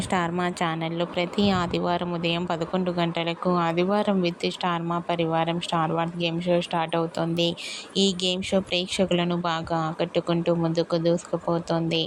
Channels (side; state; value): both; identical; correlation 1.00